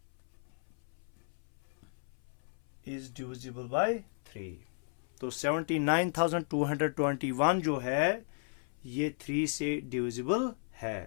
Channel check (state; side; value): silent; right; 55 dB below the other